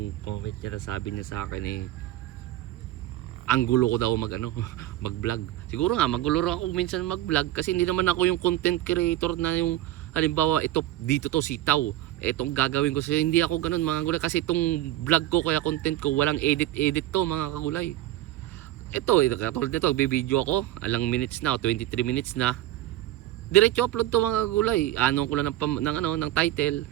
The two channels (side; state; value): left; quieter; 14.4 dB